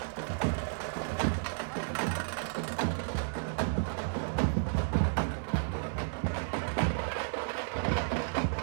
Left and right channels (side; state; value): left; silent; digital silence